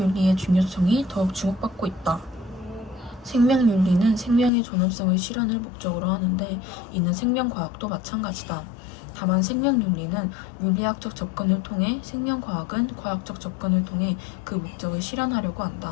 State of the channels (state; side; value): drops out; right; at 4.5 s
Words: 중요성이 더욱 주목받고 있다. 생명윤리는 생명의 존엄성의 실현을 목적으로 하는데 이는 생명과학도 마찬가지다. 다만 생명윤리는 윤리학적 접근을 통해 생명과학은 과학적 접근을 통해 그 목적을 실현하려고